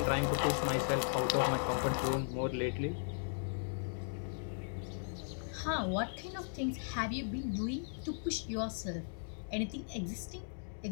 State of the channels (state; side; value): silent; right; digital silence